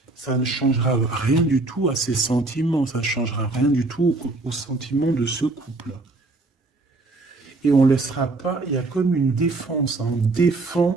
ça ne changera rien du tout à ses sentiments, ça ne changera rien du tout aux sentiments de ce couple. et on laissera pas, il y a comme une défense, hein, on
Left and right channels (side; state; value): left; quieter; 3.2 dB